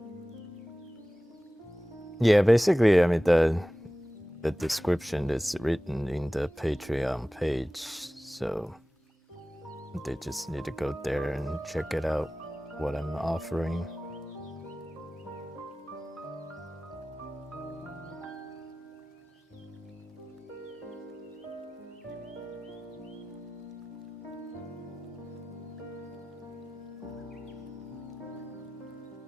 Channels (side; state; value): both; normal; correlation 0.97